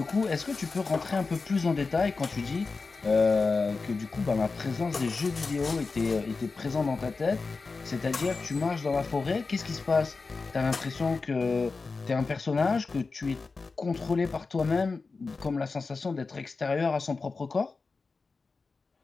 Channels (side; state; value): right; quieter; 4.2 dB